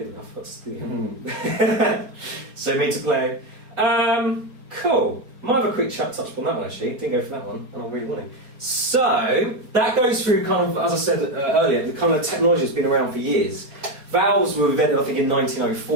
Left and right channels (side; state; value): left; late; 4.2 ms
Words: enough. That's good. So me to play. Cool. Might have a quick chat touch on that one actually. Didn't go for that one, and I'm really wanting. So that goes through kind of, as I said earlier, the kind of technology that's been around for years. Valves were invented, I think, in